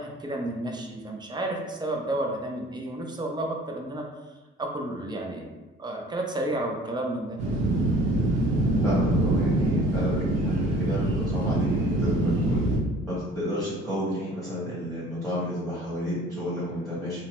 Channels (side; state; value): both; normal; correlation 0.50